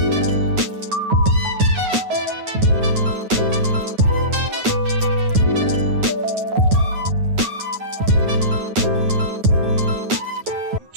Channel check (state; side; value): late; left; 9.4 ms